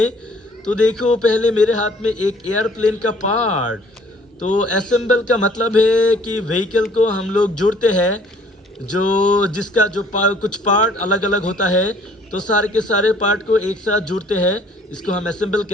तो देखो, पहले मेरे हाथ में एक एयरप्लेन का पार्ट। तो असेंबल का मतलब है कि व्हीकल को हम लोग जोड़ते हैं, जो जिसका जो कुछ पार्ट अलग अलग होता है, तो सारे के सारे पार्ट को एक साथ जोड़ते हैं। इसको हम असेंबल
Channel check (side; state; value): both; normal; correlation 0.57